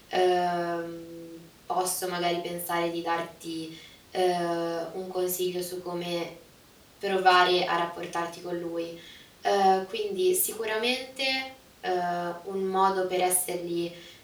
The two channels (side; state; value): both; identical; correlation 1.00